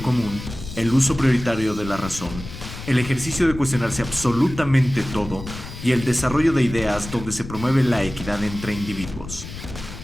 común, el uso prioritario de la razón, el ejercicio de cuestionarse absolutamente todo y el desarrollo de ideas donde se promueve la equidad entre individuos.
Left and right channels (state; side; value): noise; left; rumble, 11 dB below the sound